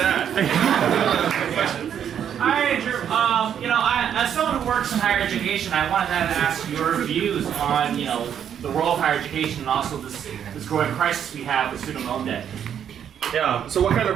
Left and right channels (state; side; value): quieter; left; 9.0 dB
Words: Hi, Andrew. As someone who works in higher education, I wanted to ask your views on, the role of higher education and also this growing crisis we have with student loan debt. Yeah. So what kind